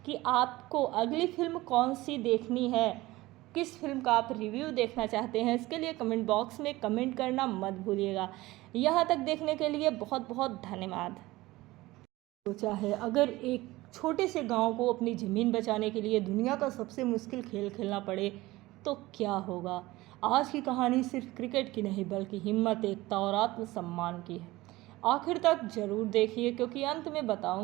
कि आपको अगली फिल्म कौन सी देखनी है, किस फिल्म का आप रिव्यू देखना चाहते हैं, इसके लिए कमेंट बॉक्स में कमेंट करना मत भूलिएगा। यहाँ तक देखने के लिए बहुत बहुत धन्यवाद। सोचा है अगर एक छोटे से गांव को अपनी ज़मीन बचाने के लिए दुनिया का सबसे मुश्किल खेल खेलना पड़े तो क्या होगा। आज की कहानी सिर्फ क्रिकेट की नहीं बल्कि हिम्मत, एकता और आत्मसम्मान की है। आखिर तक ज़रूर देखिए क्योंकि अंत में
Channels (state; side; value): quieter; left; 19.0 dB